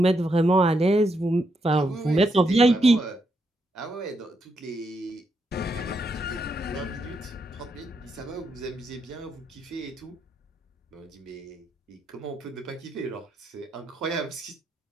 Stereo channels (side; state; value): both; normal; correlation 0.80